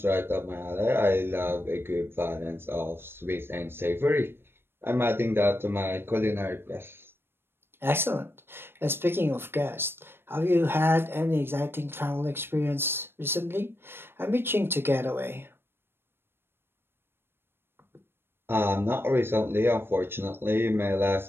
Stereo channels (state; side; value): late; left; 0.11 ms